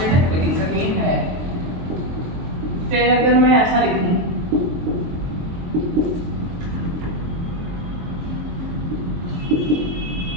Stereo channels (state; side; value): late; left; 23 ms